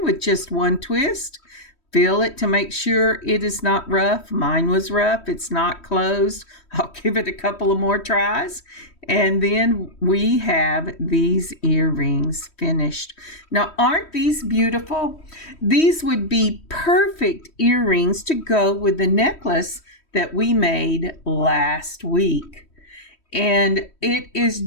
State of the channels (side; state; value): right; late; 3.1 ms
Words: with just one twist. Feel it to make sure it is not rough. Mine was rough. It's not closed. I'll give it a couple of more tries. And then we have these earrings finished. Now, aren't these beautiful? These would be perfect earrings to go with the necklace that we made last week. And it is